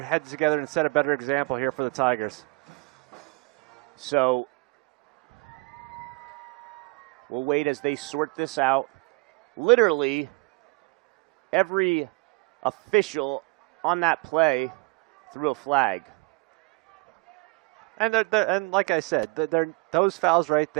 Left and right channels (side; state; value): left; quieter; 28.9 dB